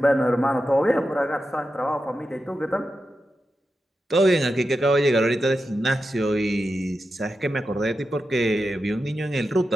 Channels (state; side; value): normal; both; correlation 0.90